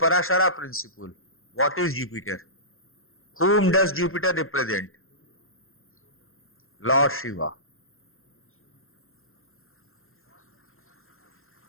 principle. What is Jupiter? Whom does Jupiter represent? Lord Shiva.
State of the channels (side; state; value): right; late; 0.61 ms